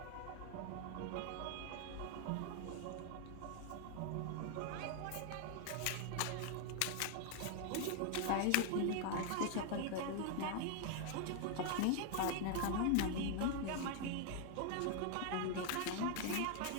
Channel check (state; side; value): different; both; correlation 0.00